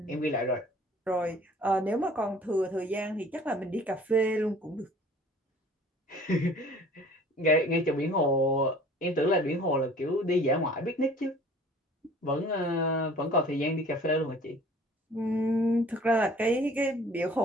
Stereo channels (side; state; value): both; normal; correlation 0.50